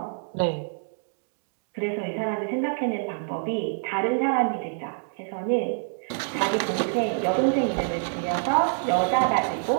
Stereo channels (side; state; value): left; silent; digital silence